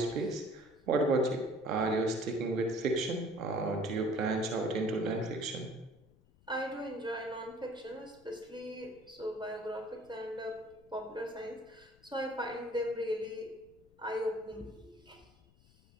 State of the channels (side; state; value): left; noise; rumble, 27 dB below the sound